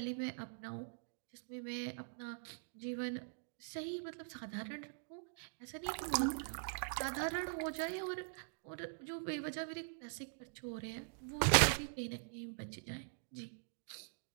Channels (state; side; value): silent; left; digital silence